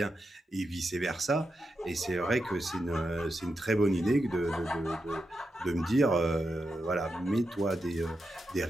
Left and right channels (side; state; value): both; normal; correlation 0.87